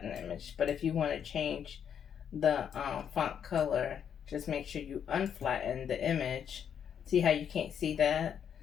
the image. But if you want to change the font color, just make sure you unflatten the image. See how you can't see that?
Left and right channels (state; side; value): quieter; right; 8.3 dB